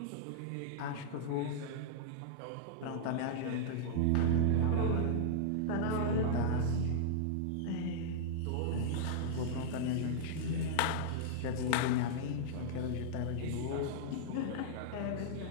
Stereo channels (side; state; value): both; different; correlation -0.01